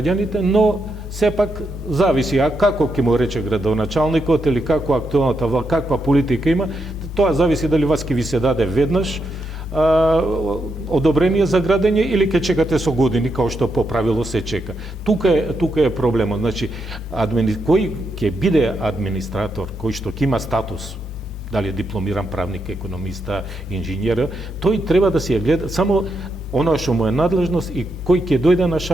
но сепак зависи како ќе му рече градоначалникот или како актуелната власт, каква политика има, тоа зависи дали вас ќе ви се даде веднаш одобрение за градење или ќе чекате со години, као што по правило се чека. Тука е проблемот. Значи, кој ќе биде администратор, кој што ќе има статус, дали е дипломиран правник, економиста, инженер, тој треба да си ја гледа само оно што му е надлежност и кој ќе дојде на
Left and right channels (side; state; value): both; normal; correlation 0.82